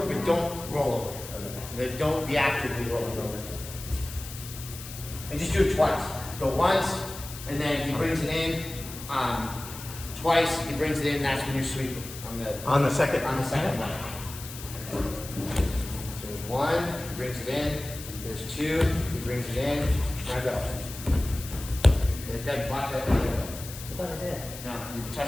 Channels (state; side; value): noise; left; hiss, 12 dB below the sound